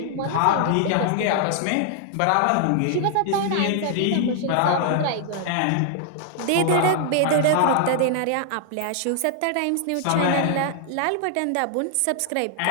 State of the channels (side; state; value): both; different; correlation -0.01